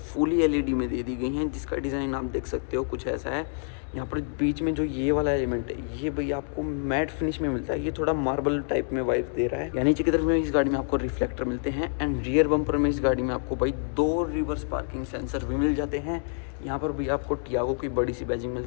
एलईडी में दे दी गई हैं जिसका डिज़ाइन आप देख सकते हो कुछ ऐसा है। यहाँ पर बीच में जो ये वाला एलिमेंट है ये भाई आपको मैट फिनिश में मिलता है, ये थोड़ा मार्बल टाइप में वाइब दे रहा है। यानी नीचे की तरफ में इस गाड़ी में आपको रिफ्लेक्टर मिलते हैं। एंड रियर बम्पर में इस गाड़ी में आपको भाई 2 रिवर्स पार्किंग सेंसर भी मिल जाते हैं। यहाँ पर भी आपको टियागो की बड़ी सी बैजिंग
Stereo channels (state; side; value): silent; right; 60 dB below the other